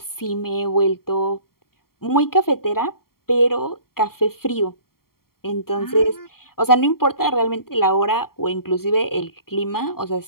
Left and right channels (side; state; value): right; late; 0.93 ms